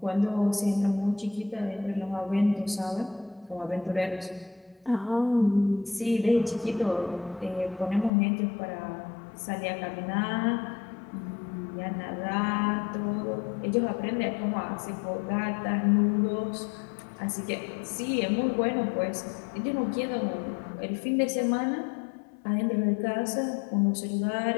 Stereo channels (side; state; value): right; drops out; at 8.1 s